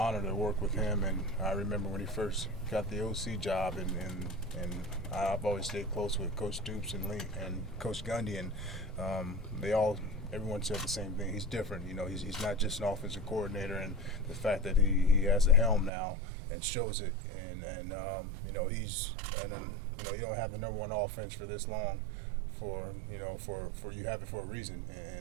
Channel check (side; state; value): left; drops out; at 15.9 s